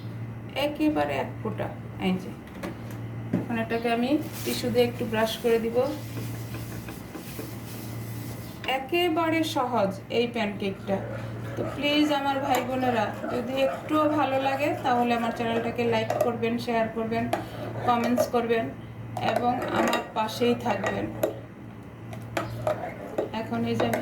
একেবারে 1 ফোঁটা। এই যে এখন এটাকে আমি টিস্যু দিয়ে একটু ব্রাশ করে দিব। একেবারে সহজ এই প্যানকেকটা। তো প্লিজ আমার ভাই বোনেরা, যদি একটুও ভালো লাগে তাহলে আমার চ্যানেলটাকে লাইক করবেন, শেয়ার করবেন, কমেন্টস করবেন এবং আমার পাশেই থাকবেন। এখন এই যে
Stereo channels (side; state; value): both; identical; correlation 1.00